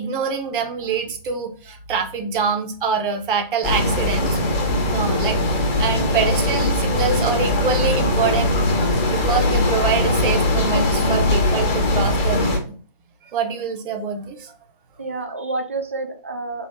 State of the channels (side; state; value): both; inverted; correlation -0.33